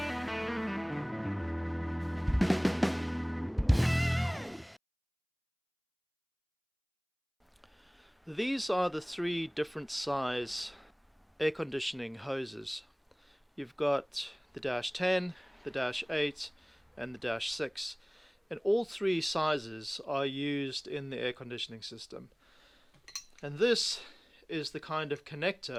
These are the three different size air conditioning hoses. You've got the -10, the -8 and the -6, and all three sizes are used in the air conditioning system. And this is the kind of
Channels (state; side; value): identical; both; correlation 1.00